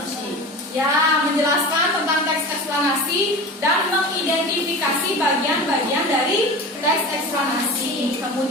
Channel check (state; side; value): normal; both; correlation 0.32